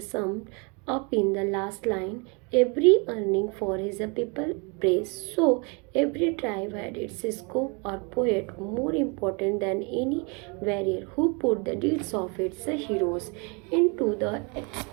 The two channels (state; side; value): quieter; left; 32.4 dB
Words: summed up in the last line: every earning for his people praise. So every tribe had its scope or poet more important than any warrior who put the deeds of its heroes into the